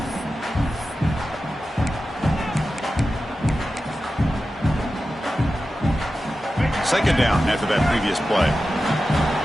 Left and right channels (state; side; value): normal; both; correlation 0.93